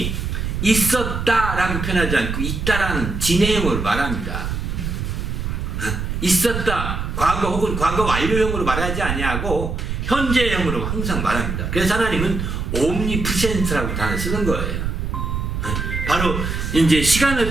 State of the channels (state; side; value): noise; right; rumble, 3 dB below the sound